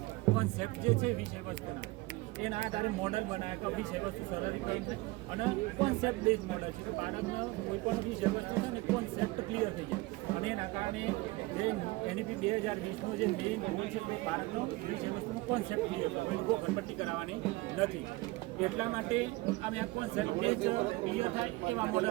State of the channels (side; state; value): left; quieter; 21.3 dB